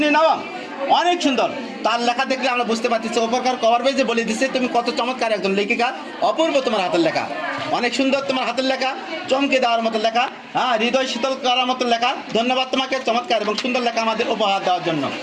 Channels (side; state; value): both; identical; correlation 1.00